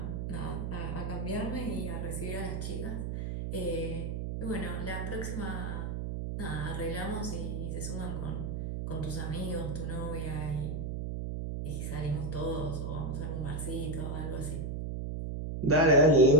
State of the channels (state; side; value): noise; right; hum, 3 dB below the sound